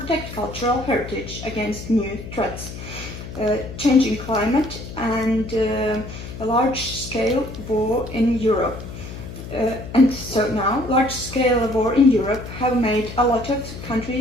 cultural heritage against new threats, changing climate and a large-scale war in Europe. and so now, large-scale war in Europe have made a lot of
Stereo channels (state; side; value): noise; left; hum, 11 dB below the sound